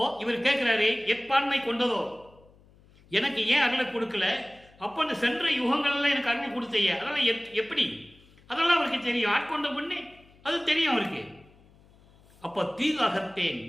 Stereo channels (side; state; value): left; noise; hum, 28 dB below the sound